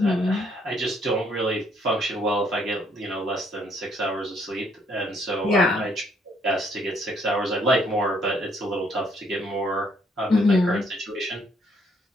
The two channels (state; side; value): normal; both; correlation 0.68